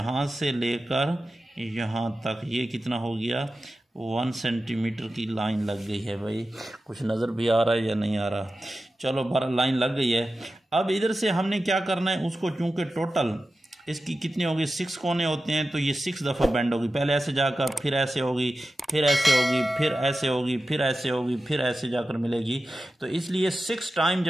से लेकर यहाँ तक ये कितना हो गया 1 सेंटीमीटर की लाइन लग गई है। भाई कुछ नज़र भी आ रहा है या नहीं आ रहा, चलो 12 लाइन लग गई है। अब इधर से हमने क्या करना है, उसको चूंकि टोटल इसकी कितनी होगी 6 कोने होते हैं तो ये 6 दफ़ा बेंड होगी। पहले ऐसे जाकर फिर ऐसे होगी, फिर ऐसे होगी, फिर ऐसे होगी, फिर ऐसे होगी, फिर ऐसे जाकर मिलेगी। तो इसलिए 6 टाइम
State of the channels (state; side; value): normal; both; correlation 0.93